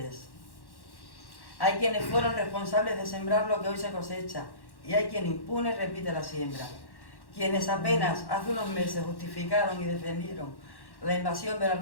hay quienes fueron responsables de sembrar lo que hoy se cosecha, y hay quien impune repite la siembra. quienes apenas hace unos meses justificaron y defendieron la invasión de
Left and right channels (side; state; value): right; late; 1.1 ms